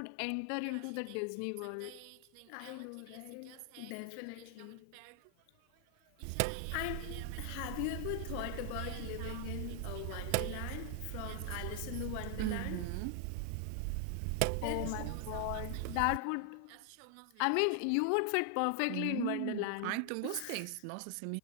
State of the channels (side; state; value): both; different; correlation 0.00